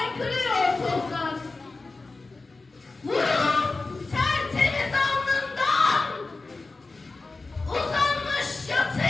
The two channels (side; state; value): right; quieter; 3.6 dB